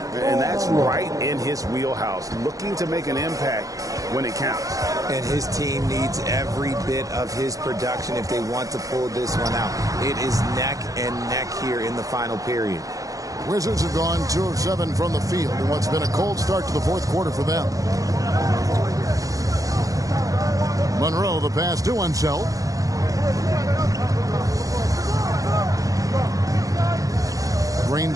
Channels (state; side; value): late; left; 0.17 ms